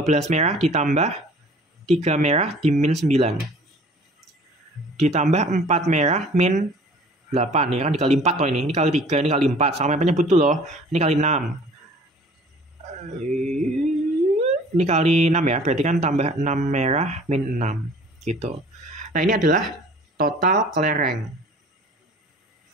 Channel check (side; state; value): both; normal; correlation 0.49